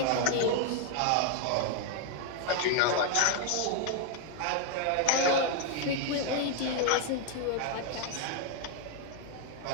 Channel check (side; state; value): both; different; correlation 0.01